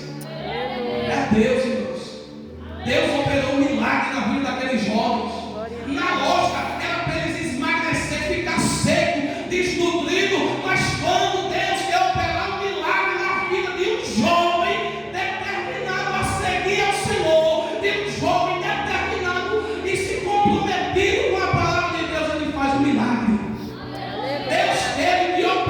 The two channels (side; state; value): both; identical; correlation 1.00